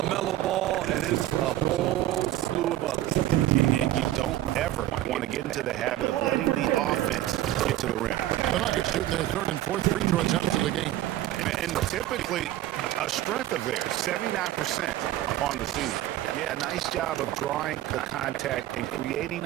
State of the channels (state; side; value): quieter; left; 14.0 dB